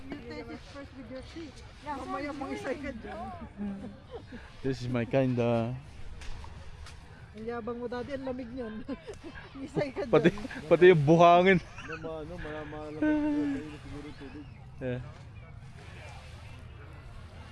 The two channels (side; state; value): both; identical; correlation 1.00